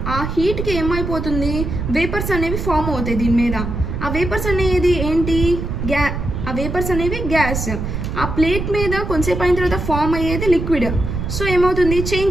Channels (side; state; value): right; noise; rumble, 4 dB below the sound